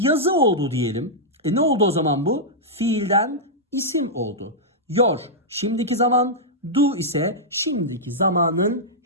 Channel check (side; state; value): both; normal; correlation -0.09